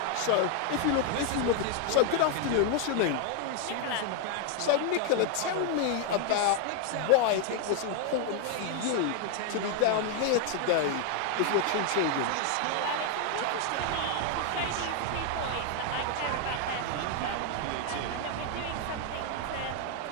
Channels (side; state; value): both; different; correlation 0.00